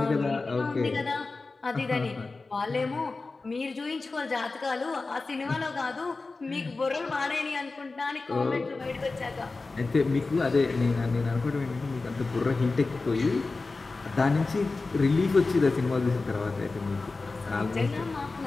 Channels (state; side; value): quieter; right; 3.7 dB